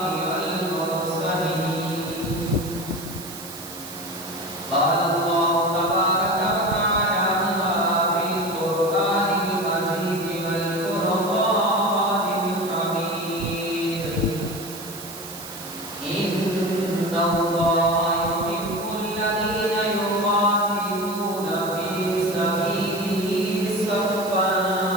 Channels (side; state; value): right; noise; hiss, 13 dB below the sound